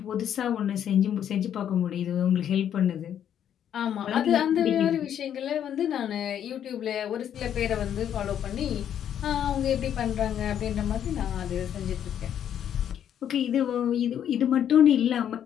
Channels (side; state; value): right; quieter; 9.6 dB